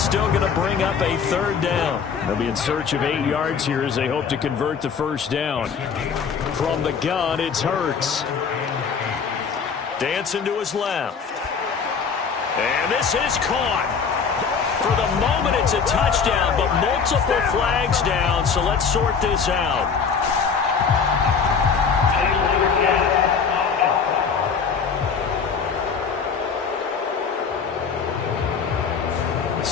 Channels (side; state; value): right; quieter; 6.0 dB